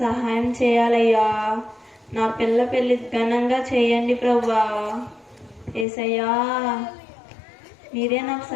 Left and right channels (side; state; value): right; drops out; at 5.9 s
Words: సహాయం చేయాలయ్యా. నా పెళ్ళి ఘనంగా చేయండి ప్రభువా. యేసయ్యా, మీరే నాకు